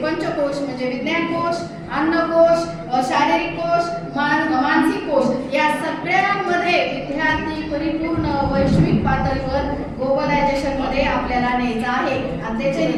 पंचकोश म्हणजे विज्ञान कोश, अन्नकोश, शारीरिक कोश, मानसिक कोश या सगळ्यांमध्ये विद्यार्थी परिपूर्ण वैश्विक पातळीवर ग्लोबलायझेशन मध्ये आपल्याला न्यायचं आहे. आणि त्याचे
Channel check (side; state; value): both; identical; correlation 1.00